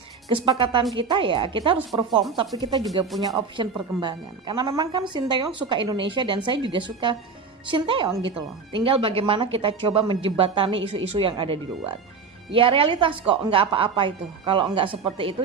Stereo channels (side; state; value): left; quieter; 5.1 dB